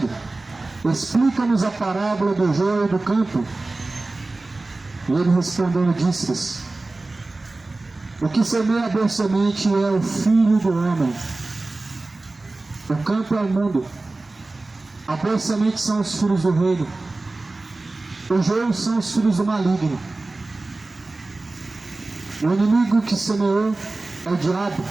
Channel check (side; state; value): left; quieter; 3.2 dB